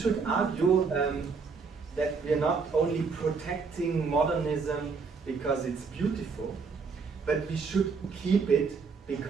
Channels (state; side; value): quieter; left; 5.0 dB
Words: argue that we are not only protecting modernism because it's beautiful, but we should keep it